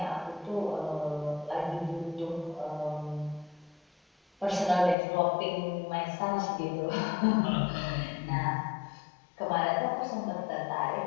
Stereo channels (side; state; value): right; drops out; at 5.0 s